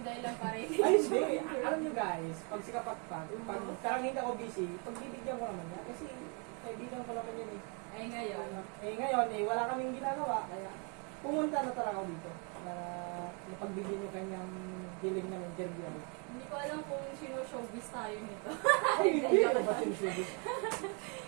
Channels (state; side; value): quieter; left; 35.4 dB